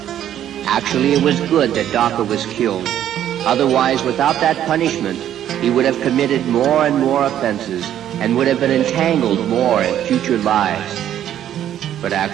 Actually, it was good that Daksa was killed. Otherwise, without that punishment, he would have committed more and more offenses and would have been entangled more in future lives. But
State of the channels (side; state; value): left; quieter; 11.0 dB